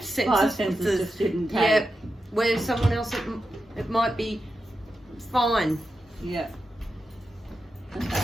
senses. Five senses just didn't take. Yeah, where someone else it might be fine. Yeah. Okay.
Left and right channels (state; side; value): normal; both; correlation 0.89